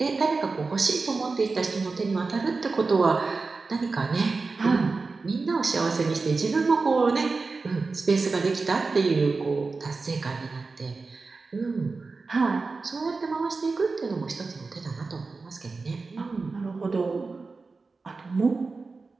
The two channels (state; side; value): quieter; left; 4.1 dB